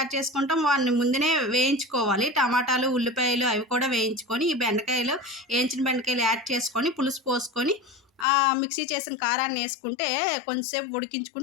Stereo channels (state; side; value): drops out; right; at 8.2 s